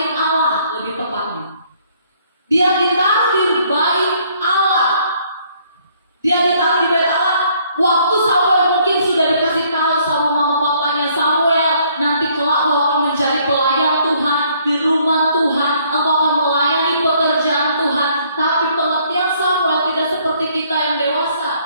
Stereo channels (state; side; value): inverted; both; correlation -0.64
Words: Allah lebih tepatnya. Dia ditaruh di bait Allah. Dia ditaruh di bait Allah. Waktu Samuel mungkin sudah dikasih tahu sama mama papanya, Samuel nanti kelak kau akan menjadi pelayan Tuhan di rumah Tuhan, engkau akan melayani pekerjaan Tuhan. Tapi pengertian Samuel tidak seperti kita yang dewasa.